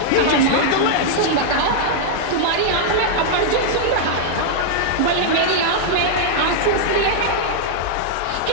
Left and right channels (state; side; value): different; both; correlation -0.01